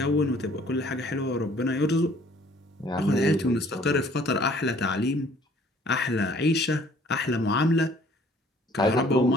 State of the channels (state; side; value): normal; both; correlation 0.57